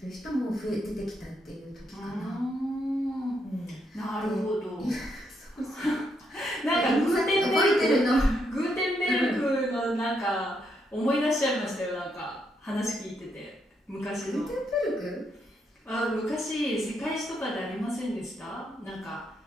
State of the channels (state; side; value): normal; both; correlation 0.78